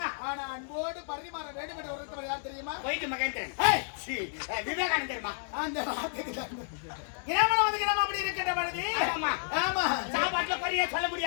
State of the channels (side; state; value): right; silent; digital silence